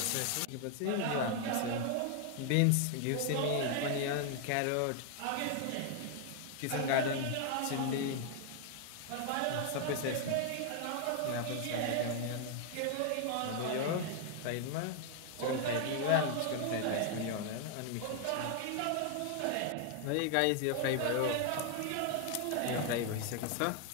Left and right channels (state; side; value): different; both; correlation 0.00